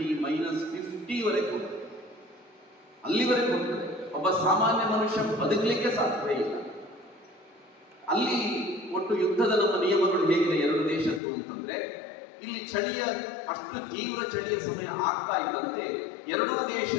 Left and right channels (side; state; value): right; drops out; at 11.2 s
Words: -50 ವರೆಗೆ ಹೋಗ್ತದೆ, ಅಲ್ಲಿವರೆಗೆ ಹೋಗ್ತದೆ. ಒಬ್ಬ ಸಾಮಾನ್ಯ ಮನುಷ್ಯ ಬದುಕಲಿಕ್ಕೆ ಸಾಧ್ಯ ಇಲ್ಲ. ಅಲ್ಲಿ ಒಟ್ಟು ಯುದ್ಧದ ನಮ್ಮ ನಿಯಮಗಳು ಹೇಗಿದೆ 2 ದೇಶದ್ದು ಅಂತಂದ್ರೆ, ಇಲ್ಲಿ ಚಳಿಯ ಅಷ್ಟು ತೀವ್ರ ಚಳಿಯ ಸಮಯ ಆಗ್ತಾ ಇದ್ದಂತೆ 2